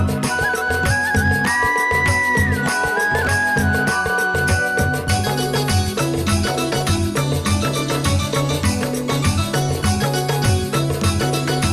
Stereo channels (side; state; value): both; identical; correlation 1.00